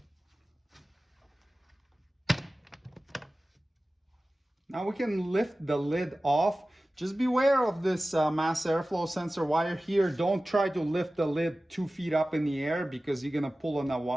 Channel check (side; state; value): both; normal; correlation 0.96